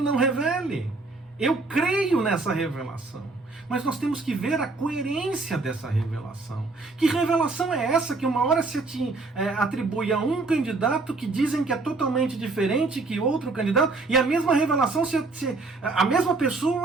revele. Eu creio nessa revelação. Mas nós temos que ver a coerência dessa revelação. Que revelação é essa que uma hora se atribui a um candidato que dizem que é totalmente diferente que outro candidato, e a mesma revelação, a mesma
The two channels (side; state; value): left; quieter; 3.6 dB